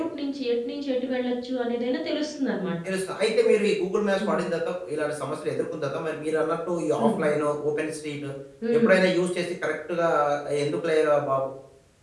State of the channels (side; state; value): both; identical; correlation 1.00